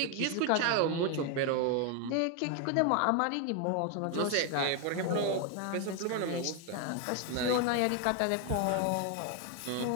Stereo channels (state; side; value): different; both; correlation 0.01